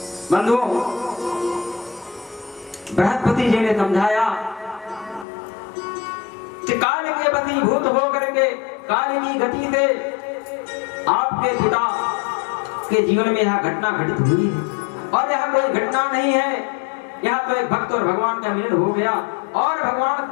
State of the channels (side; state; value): right; drops out; at 5.2 s